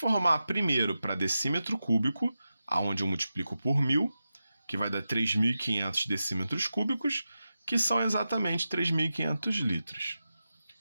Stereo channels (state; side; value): inverted; both; correlation -0.91